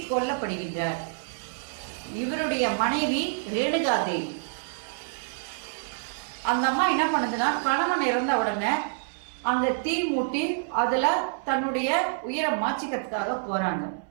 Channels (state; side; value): silent; left; 60 dB below the other